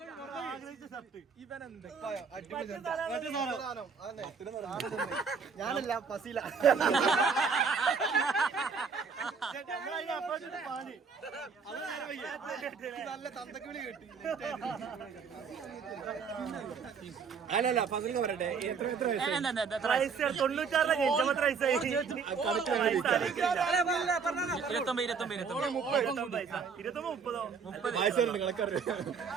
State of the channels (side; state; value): left; quieter; 5.7 dB